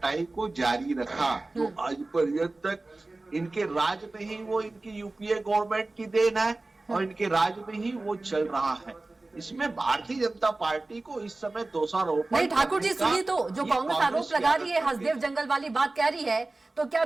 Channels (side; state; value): left; quieter; 3.1 dB